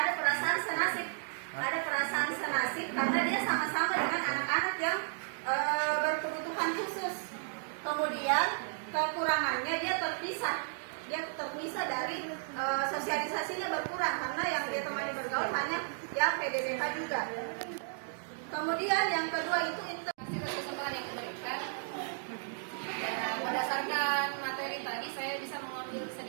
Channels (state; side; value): silent; left; digital silence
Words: perasaan senasib, karena dia sama-sama dengan anak-anak yang berkebutuhan khusus. Kemudian kekurangannya dia terpisah dari sosialisasinya berkurang, karena yang dia temani bergaul hanya yang PDBK juga. Kemudian yang kedua itu Hasil kesempatan yang diberikan. Berdasarkan materi tadi, saya bisa mengambil